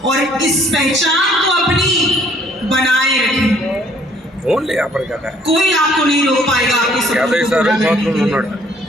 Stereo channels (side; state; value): both; normal; correlation 0.61